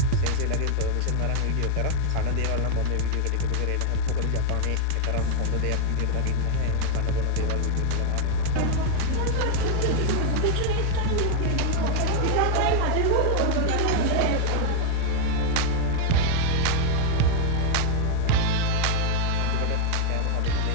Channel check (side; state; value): both; different; correlation 0.00